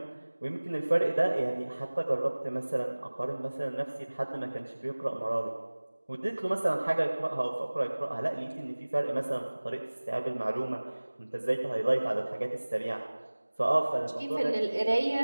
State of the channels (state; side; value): inverted; both; correlation -1.00